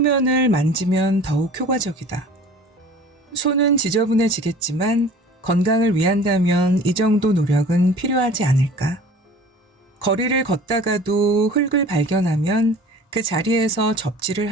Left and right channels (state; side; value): normal; both; correlation 0.45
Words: 만지면 더욱 효과적이다. 손은 지저분해지겠지만 건강을 위한다면 이 정도 노력은 필요하지 않을까? 거리를 걷다가도 흙을 발견하면 그 자리에서 접지를